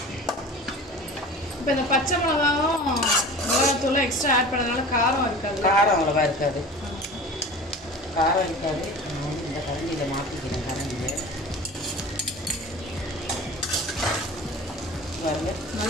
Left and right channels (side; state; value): both; normal; correlation 0.38